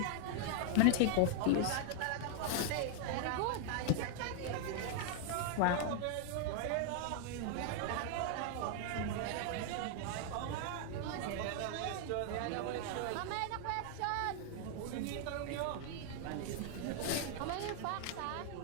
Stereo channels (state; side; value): different; both; correlation 0.00